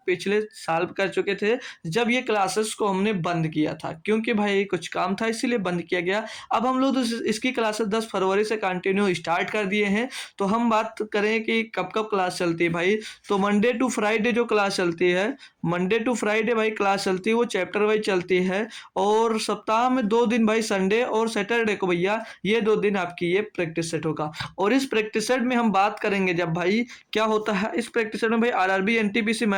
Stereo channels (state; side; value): identical; both; correlation 1.00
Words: पिछले साल कर चुके थे जब ये क्लासेस को हमने बंद किया था, क्योंकि भाई कुछ काम था इसीलिए बंद किया गया। अब हम लोग तो इसकी क्लासेस 10 फरवरी से कंटिन्यू स्टार्ट कर दिए हैं। तो हम बात करें कि कब कब क्लास चलती है भाई, तो मंडे टू फ्राइडे जो क्लास चलती है, मंडे टू फ्राइडे भाई क्लास चलती है, वो चैप्टर वाइज चलती है। और सप्ताह में 2 दिन भाई, संडे और सैटरडे को भैया ये 2 दिन आपकी ये प्रैक्टिस सेट होगा। और इस प्रैक्टिस सेट में हम बात करेंगे जब भाई क्या होता है इस प्रैक्टिस सेट में भाई, आरआरबी एनटीपीसी